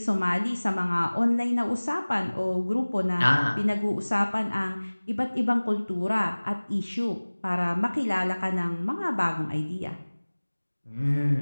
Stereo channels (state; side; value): inverted; both; correlation -1.00